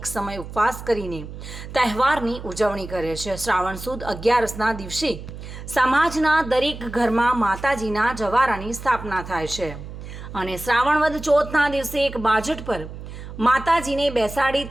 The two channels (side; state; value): right; noise; hum, 11 dB below the sound